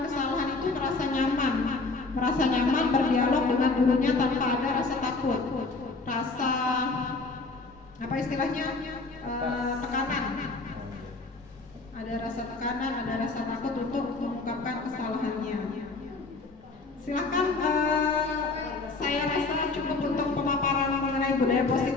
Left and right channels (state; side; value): quieter; right; 3.7 dB